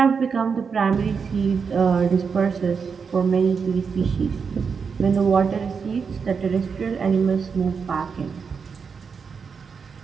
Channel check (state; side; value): quieter; left; 5.8 dB